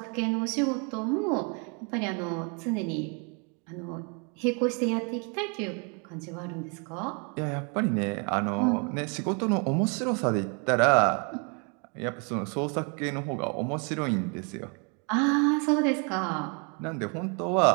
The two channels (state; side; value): quieter; left; 35.8 dB